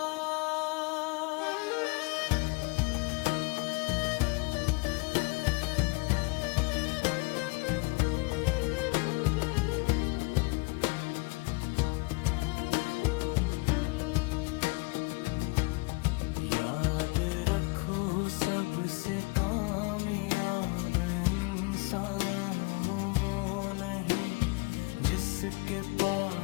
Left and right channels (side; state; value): right; quieter; 28.3 dB